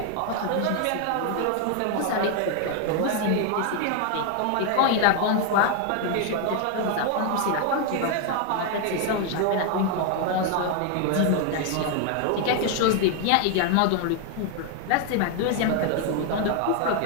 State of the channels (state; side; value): different; both; correlation 0.01